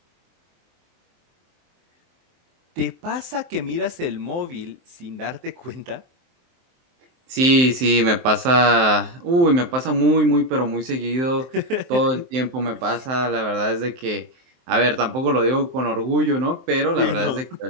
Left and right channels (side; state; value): left; late; 23 ms